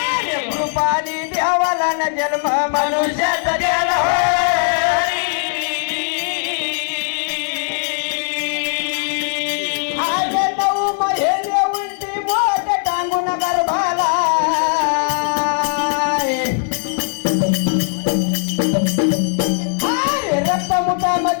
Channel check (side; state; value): right; silent; digital silence